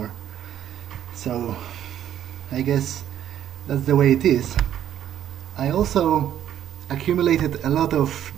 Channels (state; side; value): quieter; left; 10.7 dB